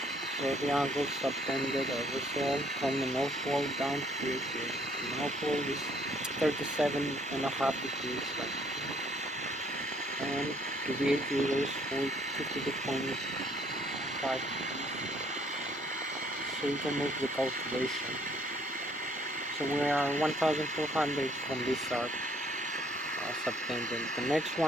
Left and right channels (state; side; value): normal; both; correlation 0.63